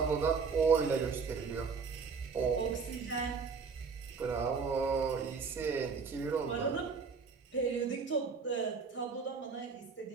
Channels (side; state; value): left; quieter; 5.3 dB